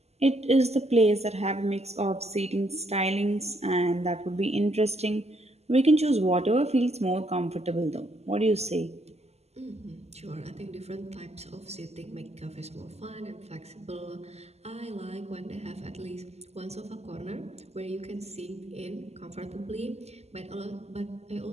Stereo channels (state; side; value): late; left; 0.30 ms